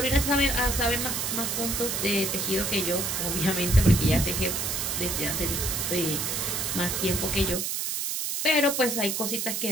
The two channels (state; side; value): noise; right; hiss, 1 dB below the sound